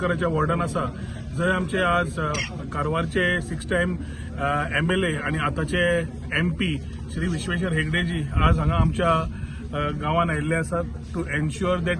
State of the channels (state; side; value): identical; both; correlation 1.00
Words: वॉर्डान आसा, जंय आमचे आज कारवारचे 6 टाइम MLA आणि आताचे MP श्री विश्वेश्वर हेगडेजी आज हांगा आमच्या गांवान आयिल्ले आसात to ensure that